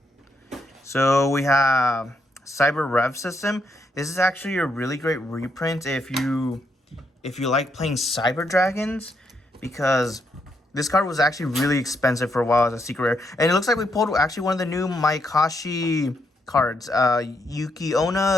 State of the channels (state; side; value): normal; both; correlation 0.78